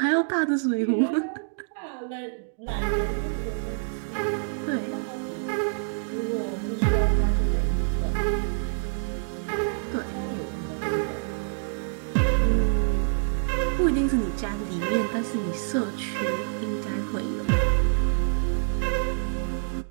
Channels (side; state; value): left; silent; digital silence